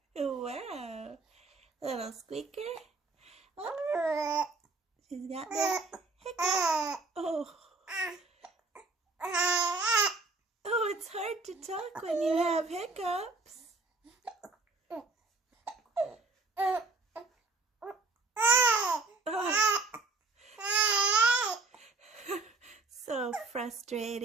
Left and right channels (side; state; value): left; quieter; 3.6 dB